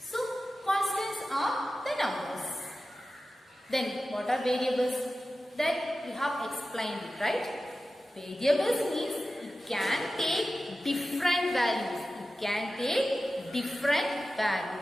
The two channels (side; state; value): both; normal; correlation 0.94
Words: constants are the numbers. Then, what are variables? That we have explained it, right? Variables means it can take different values. It can take different